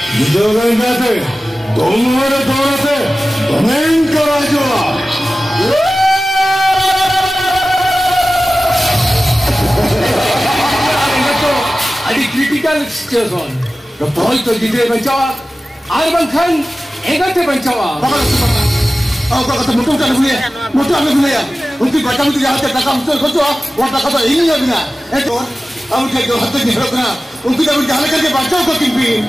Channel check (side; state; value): both; normal; correlation 0.96